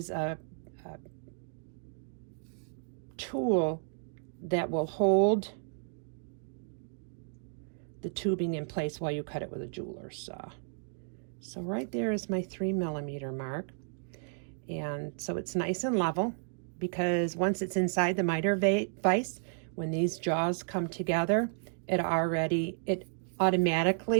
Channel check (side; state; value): left; silent; 56 dB below the other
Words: a tool that will hold the tubing in place while you cut it with a jeweler's saw. So right there is my 3mm mark, and so it's nice and level, because once it's inside the miter vise, when these jaws come together, it